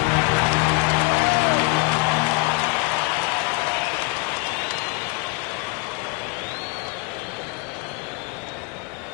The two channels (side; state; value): right; quieter; 25.8 dB